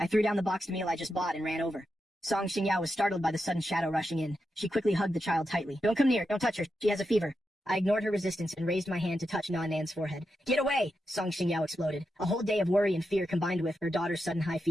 I threw down the boxed meal I just bought and ran over. Song Xingyao was startled by the sudden shadow rushing in. She quickly hugged the child tightly. Don't come near. Don't touch her. She has a fever. I ignored her resistance and raised my hand to touch Nan Nan's forehead. Get away! Song Xingyao exploded. A whole day of worry and fear combined with her daughter's sudden high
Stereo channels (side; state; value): both; normal; correlation 0.87